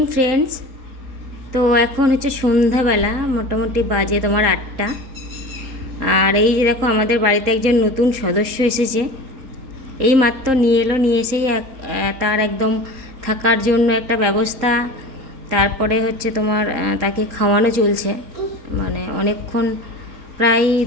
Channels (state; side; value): late; left; 3.8 ms